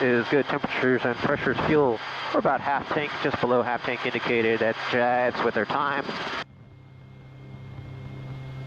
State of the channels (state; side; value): identical; both; correlation 1.00